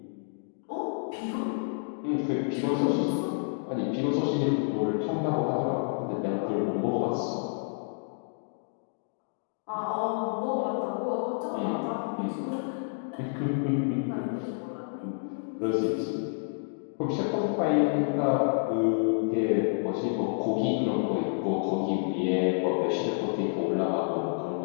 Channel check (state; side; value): silent; right; digital silence